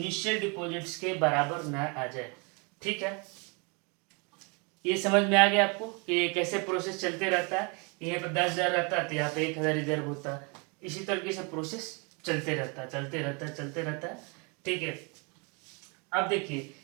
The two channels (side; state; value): left; quieter; 32.4 dB